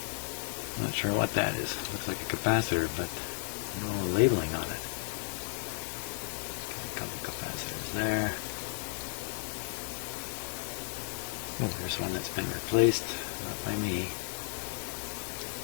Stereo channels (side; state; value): right; silent; digital silence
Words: Not sure what that is. Looks like a capacitor, but no labeling on it. Okay, a couple capacitors there. Oh, there's one that's been replaced. Not by me.